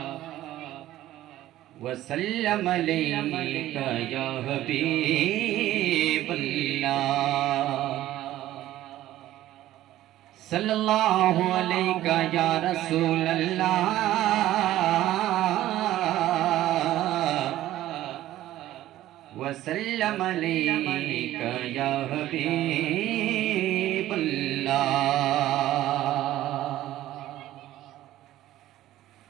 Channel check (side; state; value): left; quieter; 14.2 dB